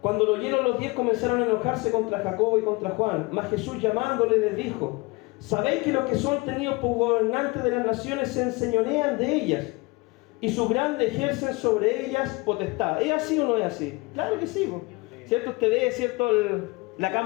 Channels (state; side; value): quieter; right; 25.5 dB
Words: Cuando lo oyeron, los 10 comenzaron a enojarse contra Jacobo y contra Juan. Mas Jesús, llamándole, les dijo: ¿sabéis que los que son tenidos por gobernantes de las naciones se enseñorean de ellas, y sus grandes ejercen sobre ellas potestad? ¿Es así o no es así? Claro que sí, ¿cierto? Usted ve, ¿cierto?, la